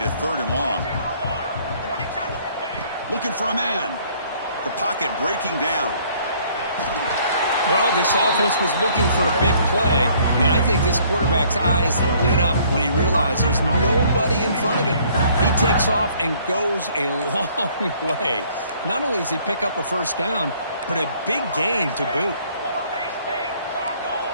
a third and long. Looking for a man. The pocket breaking down. Well, this offense was looking for a big play, and I think this quarterback's eyes lit up when he realized there's nobody in front of him. He takes off and goes a long way. Not only does he pick up a first down, but a big gain to boot.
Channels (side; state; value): both; inverted; correlation -0.60